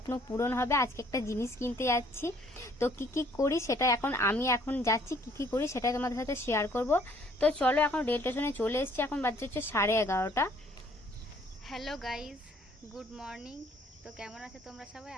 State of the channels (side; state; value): both; normal; correlation 0.61